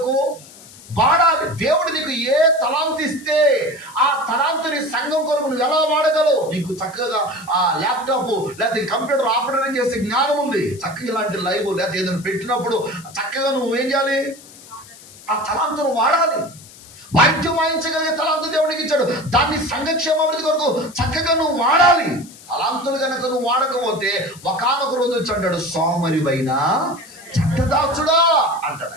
వాడాలి. దేవుడు నీకు ఏ తలాంతు ఇస్తే ఆ తలాంతుని సంఘం కొరకు నువ్వు ఎలా వాడగలవు? నీకు చక్కగా ఆ ల్యాప్టాప్ లేకపోతే కంప్యూటర్ ఆపరేషన్ చేసే జ్ఞానం ఉంది, చక్కగా ఇలాంటి లైవ్ లేకపోతే ఏదైనా పెట్టినప్పుడు చక్కగా నువ్వు ఏం చేయాలి? ఆ తలాంతును వాడాలి. వాయిద్యం వాయించగలిగే తలాంతు దేవుడికి ఇచ్చాడు, దాన్ని సంఘక్షేమాభివృద్ధి కొరకు చక్కగా నువ్వు వాడాలి. తలాంతులు కనుక నువ్వు వాడకపోతే ఒకానొక రోజు వచ్చి అంటాడు, సోమరివైన చెడ్డదాసుడా అంటాడు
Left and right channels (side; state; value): left; noise; hiss, 20 dB below the sound